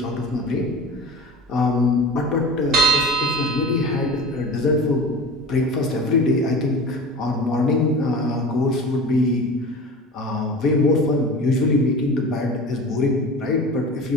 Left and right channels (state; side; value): normal; both; correlation 0.35